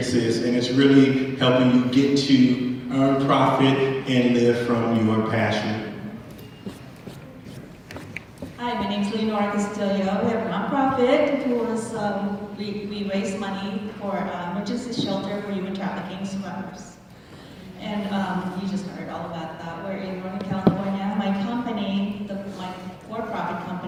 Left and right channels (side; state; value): both; identical; correlation 1.00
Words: And it's really helping you get to earn profit and live from your passion. Hi, my name is Leonora Castillo. We have a nonprofit who is, we raise money for emergency shelter for human trafficking survivors. And you just heard all about that. We're in Northern California. My company, my for-profit